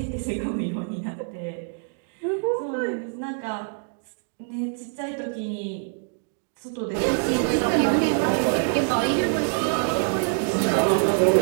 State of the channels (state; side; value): silent; left; 62 dB below the other